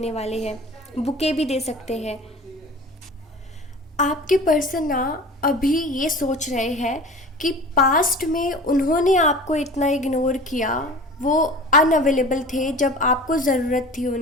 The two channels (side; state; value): both; normal; correlation 0.39